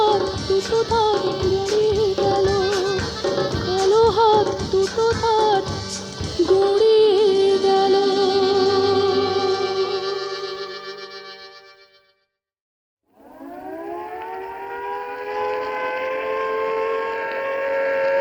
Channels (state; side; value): identical; both; correlation 1.00